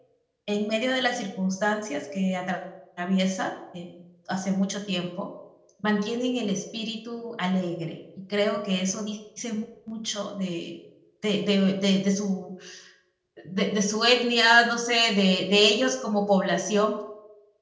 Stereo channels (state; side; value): identical; both; correlation 1.00